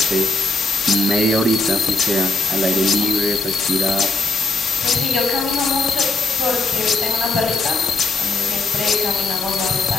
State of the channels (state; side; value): quieter; right; 3.2 dB